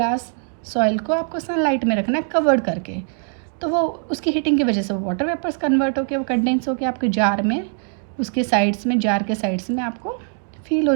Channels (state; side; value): silent; left; 57 dB below the other